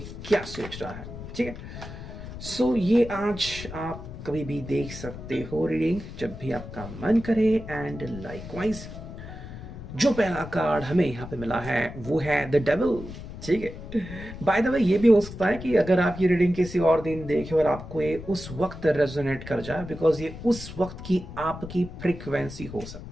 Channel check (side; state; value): left; noise; rumble, 11 dB below the sound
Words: क्या सोच रहा है। ठीक है, सो ये आज आप कभी भी देख सकते हो रीडिंग जब भी आपका मन करे। एंड लाइकवाइज जो पहला कार्ड हमें यहाँ पे मिला है वो है द डेविल। ठीक है, बाय द वे ये भी हो सकता है कि अगर आप ये रीडिंग किसी और दिन देखें और आपको ये उस वक्त रेजोनेट कर जाए, बिकॉज ये उस वक्त की आपकी फ्रीक्वेंसी हो